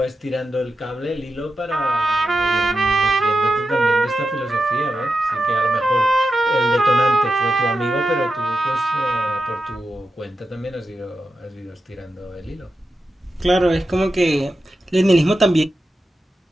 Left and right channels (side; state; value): both; normal; correlation 0.90